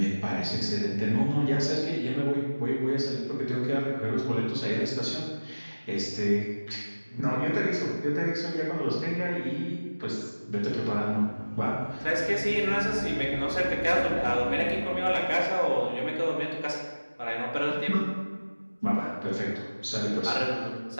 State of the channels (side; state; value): both; inverted; correlation -1.00